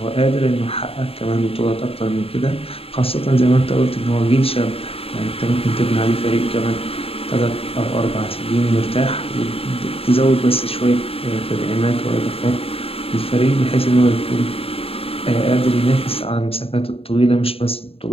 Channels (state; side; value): late; right; 0.28 ms